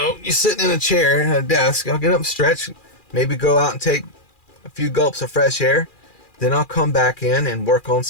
sitting in a chair at a desk. I'll get up, stretch, maybe go out and take a few gulps of fresh air. Then I'll come back in and work on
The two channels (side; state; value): right; late; 2.4 ms